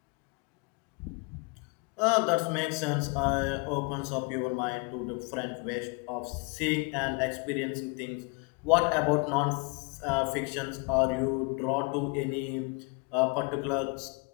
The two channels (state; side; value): quieter; right; 31.0 dB